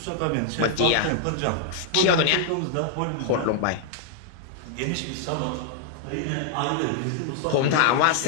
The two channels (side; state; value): both; different; correlation 0.00